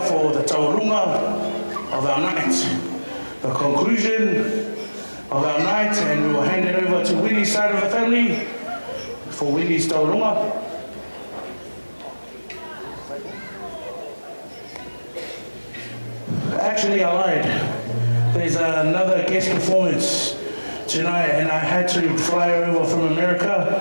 for the taurunga of our night, the conclusion of our night, and we will hand it over to Winnie's side of the family for Winnie's taurunga. Actually, I lied. There's another guest performance tonight, and I had to fly over from America.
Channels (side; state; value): both; inverted; correlation -1.00